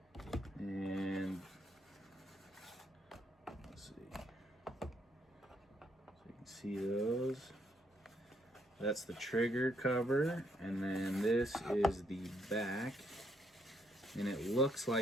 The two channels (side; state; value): both; normal; correlation 0.72